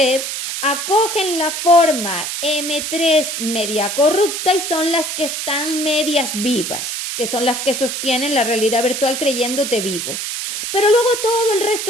acogen la forma M3 media corrupta y son las que están medias vivas, que son las que sostienen la realidad virtual creyéndote vivo. Pero luego todo el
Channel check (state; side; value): noise; right; hiss, 4 dB below the sound